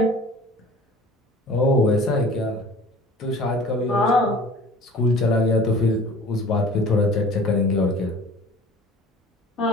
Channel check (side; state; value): both; normal; correlation 0.45